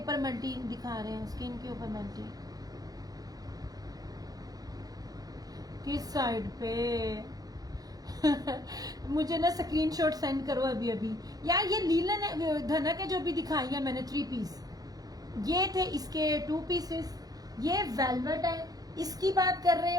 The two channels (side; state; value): left; late; 0.18 ms